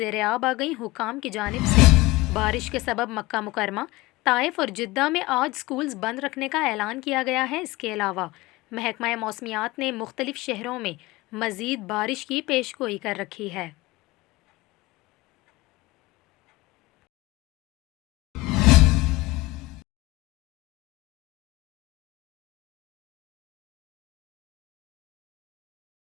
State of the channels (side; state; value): right; quieter; 19.7 dB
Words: आ गईं। हुकाम की जानिब से बारिश के सबब मक्का मुकरमा, ताइफ और जिद्दा में आज स्कूल्स बंद रखने का ऐलान किया गया है। इसके अलावा महकमा मौसमियात ने मुख्तलिफ शहरों में मज़ीद बारिश की पेशगोई कर रखी है।